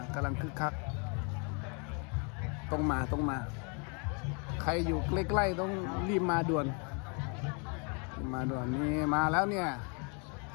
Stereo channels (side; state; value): right; quieter; 35.8 dB